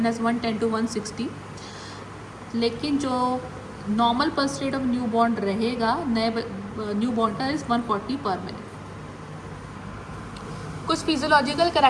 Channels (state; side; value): identical; both; correlation 1.00